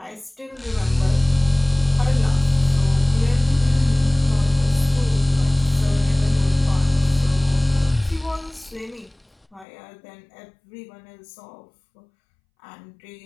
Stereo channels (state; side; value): drops out; right; at 9.7 s